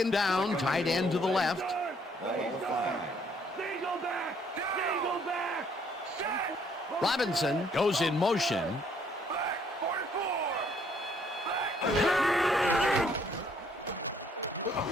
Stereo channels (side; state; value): both; normal; correlation 0.65